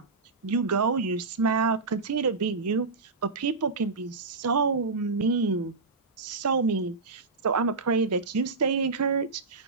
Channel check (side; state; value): left; quieter; 4.1 dB